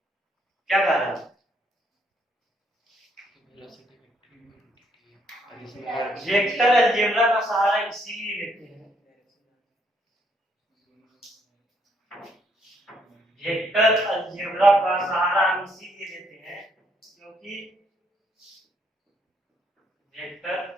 क्या कारण है, वेक्टर अलजेब्रा का सहारा इसीलिए लेते हैं, वेक्टर अलजेब्रा का सहारा हम इसीलिए लेते हैं क्योंकि वेक्टर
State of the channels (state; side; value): normal; both; correlation 0.71